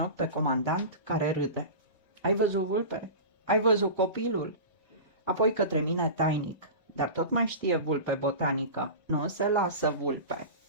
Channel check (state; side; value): inverted; both; correlation -0.30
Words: pe comandant care râde. Ai văzut, Vulpe? Ai văzut copilul? Apoi către mine tainic, dar tot mai știe Vulpe botanică. Nu se lasă, Vulpe,